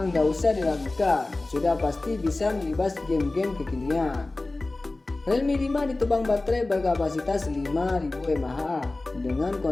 nggak usah diragukan, sudah pasti bisa melibas game-game kekinian. Realme 5 ditopang baterai berkapasitas 5000 mAh dengan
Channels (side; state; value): right; quieter; 3.0 dB